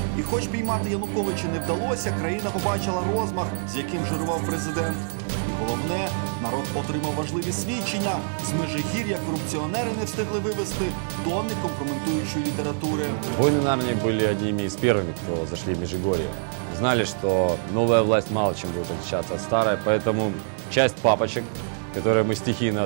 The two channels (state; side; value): silent; left; digital silence